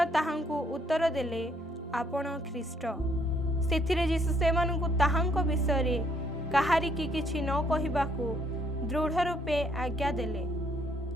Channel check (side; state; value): both; normal; correlation 0.68